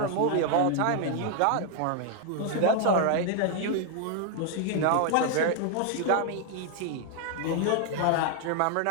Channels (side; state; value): both; different; correlation 0.00